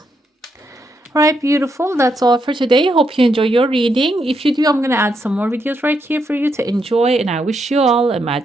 All right, beautiful. That's all for today. Hope you enjoy your reading. If you do, I'm going to add some more videos right here for you to enjoy, and I wish you all a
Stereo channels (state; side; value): normal; both; correlation 0.79